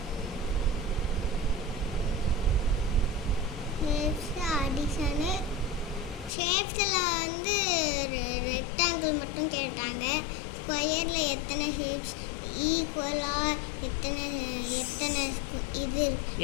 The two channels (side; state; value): right; drops out; at 6.3 s